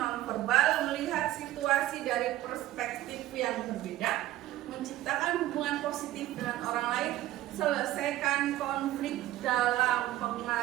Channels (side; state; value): left; quieter; 14.8 dB